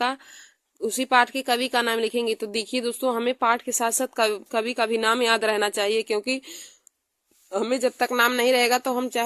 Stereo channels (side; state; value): both; identical; correlation 1.00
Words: उसी पाठ के कवि का नाम लिखेंगे। तो देखिए दोस्तों, हमें पाठ के साथ साथ कवि का भी नाम याद रहना चाहिए, क्योंकि हमें जब तक नाम नहीं रहेगा तो हम